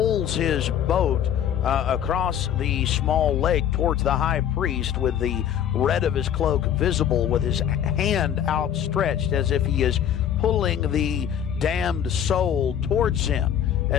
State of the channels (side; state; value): right; quieter; 9.6 dB